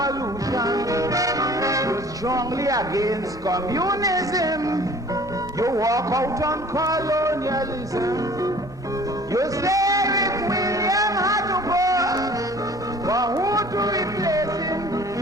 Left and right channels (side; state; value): both; normal; correlation 0.49